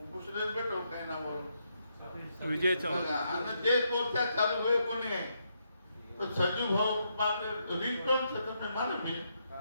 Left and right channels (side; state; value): both; inverted; correlation -0.79